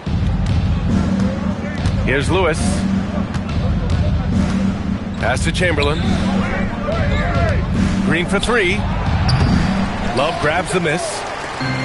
Here's Lewis. Pass to Chamberlain. Green for three. Love grabs the miss.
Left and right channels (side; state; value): both; identical; correlation 1.00